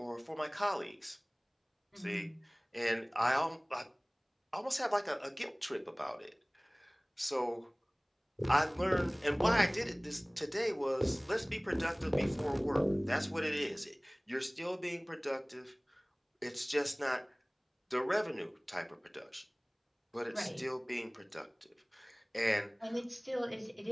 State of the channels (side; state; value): both; identical; correlation 1.00